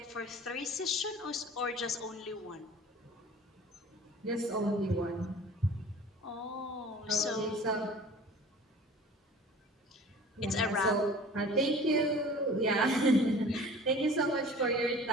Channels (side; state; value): both; normal; correlation 0.44